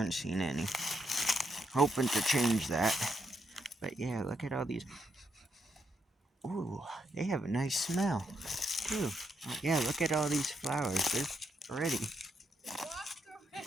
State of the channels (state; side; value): normal; both; correlation 0.79